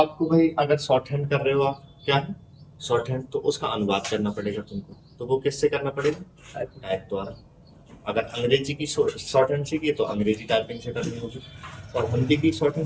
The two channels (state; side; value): identical; both; correlation 1.00